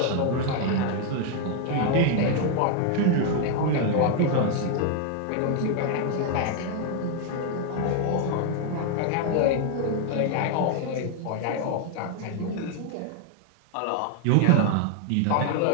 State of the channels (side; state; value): both; different; correlation 0.00